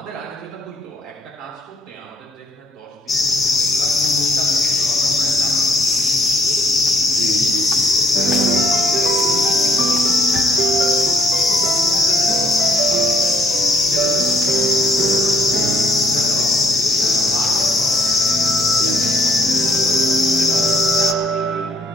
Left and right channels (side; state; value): both; normal; correlation 0.64